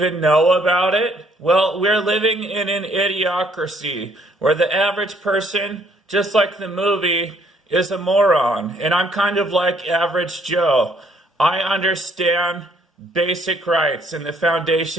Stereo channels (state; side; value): normal; both; correlation 0.65